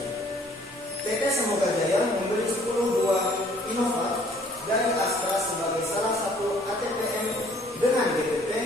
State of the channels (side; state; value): both; normal; correlation 0.59